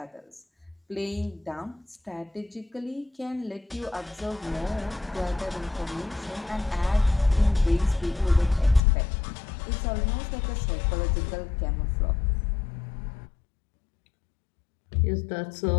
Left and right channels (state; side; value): drops out; right; at 8.8 s